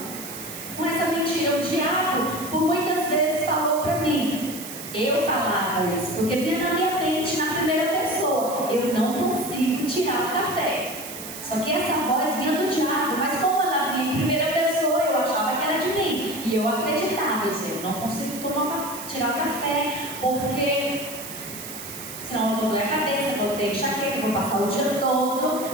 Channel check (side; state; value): right; noise; hiss, 11 dB below the sound